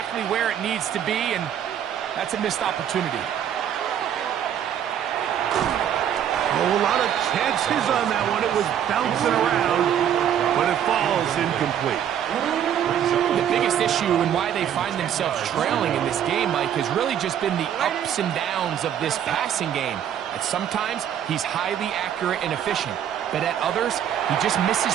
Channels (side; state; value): left; quieter; 9.6 dB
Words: where it needs to be, and that's a missed opportunity. A lot of chances on that one. It was bouncing around, but it falls incomplete. The biggest issue and why they find themselves trailing in this game, Mike, has really just been the ups and downs of this passing game. At sometimes, he's highly accurate and efficient, but at others, he just